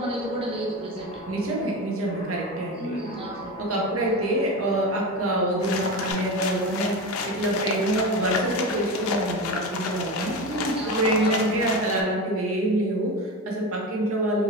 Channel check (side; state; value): both; normal; correlation 0.23